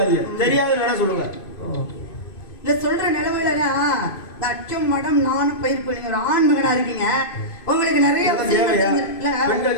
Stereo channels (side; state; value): right; late; 2.5 ms